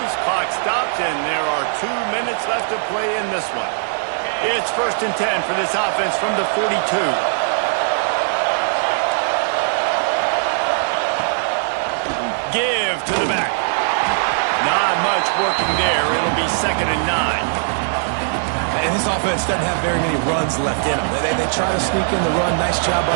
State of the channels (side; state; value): left; silent; digital silence